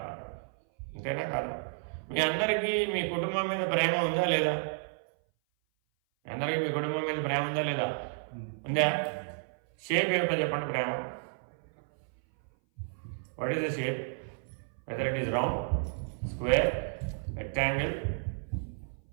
అంతేనా కాదు? మీ అందరికీ మీ కుటుంబం మీద ప్రేమ ఉందా లేదా? అందరికీ మీ కుటుంబం మీద ప్రేమ ఉందా లేదా? ఉందా? షేప్ ఏమిటో చెప్పండి ప్రేమ. What is the shape? Whether it is round, square, rectangle.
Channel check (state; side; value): silent; left; 56 dB below the other